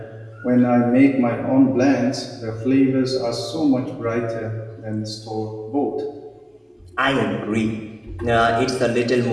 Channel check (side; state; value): both; identical; correlation 1.00